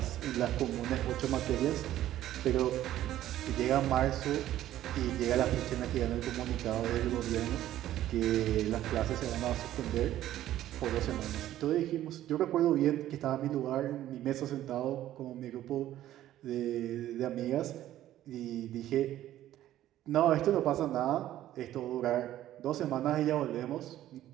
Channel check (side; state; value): left; quieter; 13.2 dB